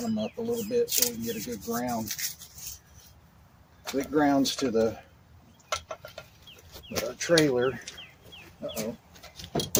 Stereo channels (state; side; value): identical; both; correlation 1.00